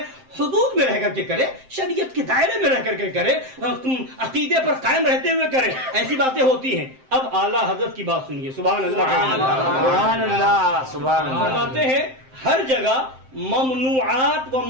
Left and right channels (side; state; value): left; late; 7.7 ms